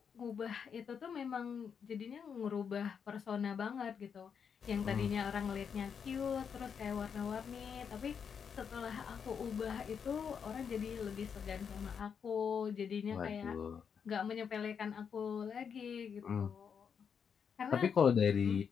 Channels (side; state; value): right; quieter; 6.9 dB